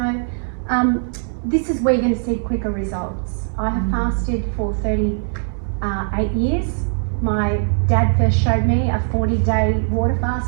this is where you're going to see quicker results. I have fasted for 38 years. My dad first showed me a 40-day water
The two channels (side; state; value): left; silent; digital silence